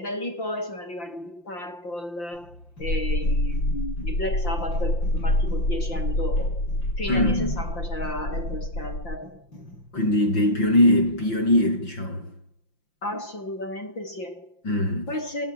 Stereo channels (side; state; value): right; late; 5.8 ms